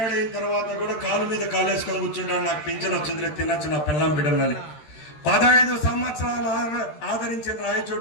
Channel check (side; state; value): right; late; 13 ms